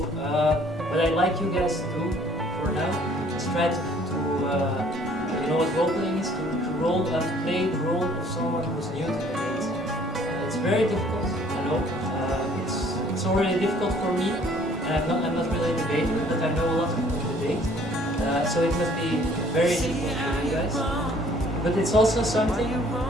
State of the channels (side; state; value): both; normal; correlation 0.58